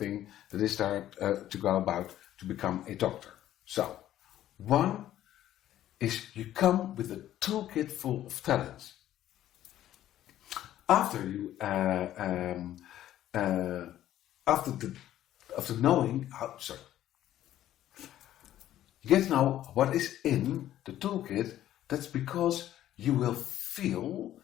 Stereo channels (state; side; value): quieter; right; 12.6 dB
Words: that is there to go about to become a doctor. So, one is you come with a toolkit full of talents. After you, after knowing how, You get to know what is in the toolkit. That's because you will feel